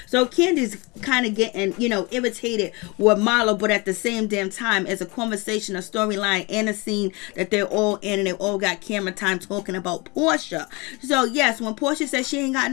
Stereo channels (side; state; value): right; quieter; 26.6 dB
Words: So Kandi's kind of getting, irritated with Marlo, but at the same damn time, it's a conversation, a storyline, and a scene that they're all in, and they all got camera time talking about Porsha. So yes, when Porsha says she ain't got